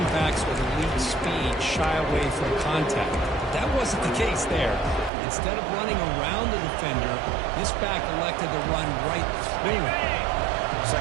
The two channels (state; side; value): drops out; left; at 5.1 s